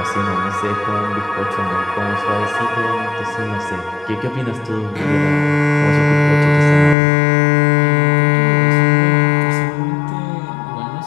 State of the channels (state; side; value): drops out; right; at 7.0 s